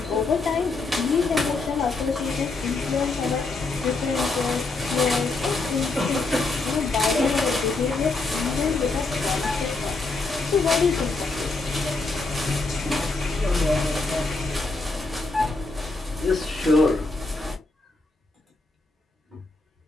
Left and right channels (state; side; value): quieter; right; 3.4 dB